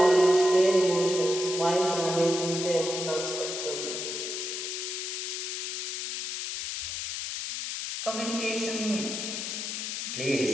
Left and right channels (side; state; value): left; noise; hiss, 4 dB below the sound